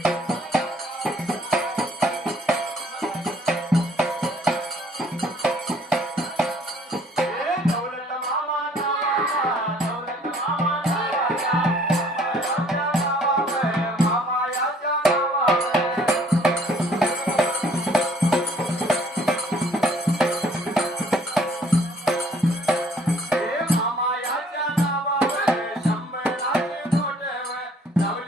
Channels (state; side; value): normal; both; correlation 0.59